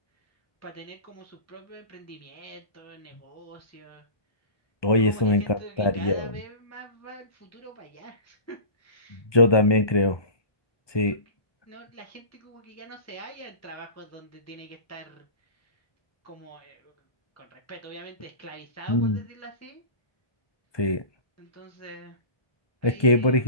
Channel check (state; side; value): late; right; 1.2 ms